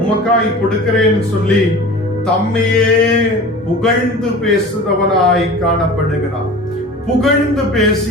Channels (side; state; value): both; normal; correlation 0.38